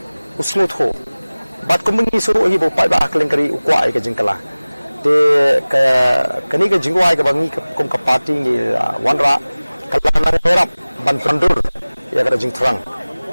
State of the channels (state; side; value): inverted; both; correlation -0.99